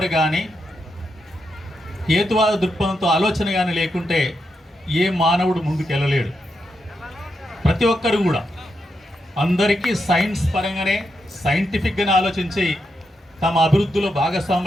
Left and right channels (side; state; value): both; normal; correlation 0.84